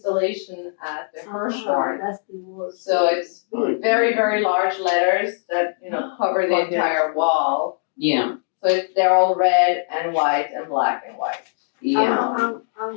at the Hirshhorn. That's the word. So it's very, very large letters that, cover the entire wall. Yeah. So they're all red and white and black and white. Yeah.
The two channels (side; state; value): right; silent; digital silence